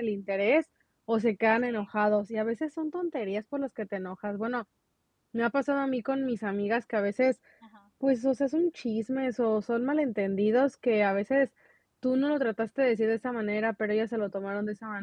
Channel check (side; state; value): both; identical; correlation 1.00